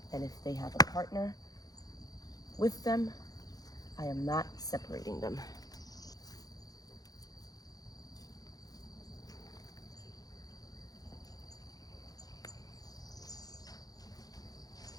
And if they have a partner with them, I am not separating them.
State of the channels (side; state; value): right; late; 0.18 ms